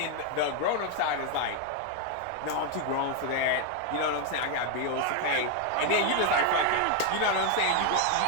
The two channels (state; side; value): different; both; correlation 0.01